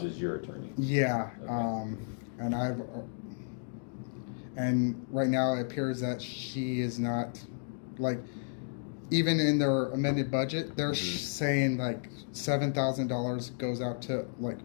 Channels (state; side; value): silent; right; digital silence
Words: is your attorney. Yeah. Okay. And right now it appears that she is not, like, even in their amended budget, they're saying like $7,000 goes out to like